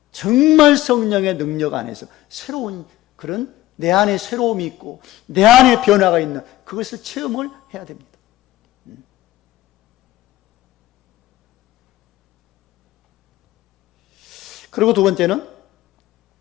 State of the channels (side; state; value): right; quieter; 15.9 dB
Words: 정말 성령의 능력 안에서 새로운 그런 내 안에 새로움이 있고 내 안에 변화가 있는 그것을 체험을 해야 됩니다. 그리고 두 번째는